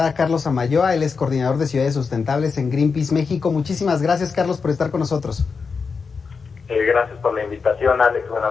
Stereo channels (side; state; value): right; quieter; 5.2 dB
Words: a Carlos Amayoa. Él es coordinador de ciudades sustentables en Greenpeace México. Muchísimas gracias, Carlos, por estar con nosotros. Gracias por la invitación, Alex.